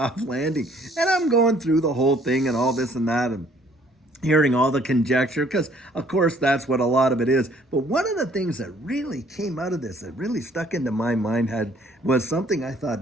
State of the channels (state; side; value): normal; both; correlation 0.61